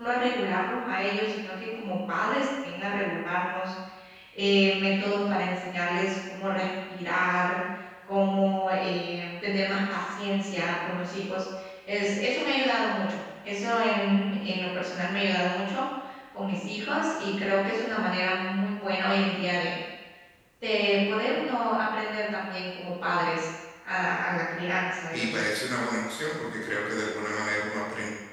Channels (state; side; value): identical; both; correlation 1.00